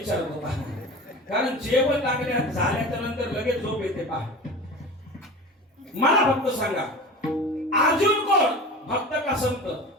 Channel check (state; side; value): normal; both; correlation 0.34